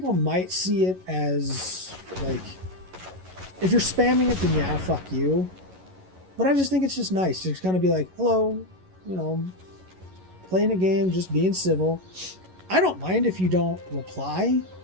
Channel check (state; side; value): late; left; 11 ms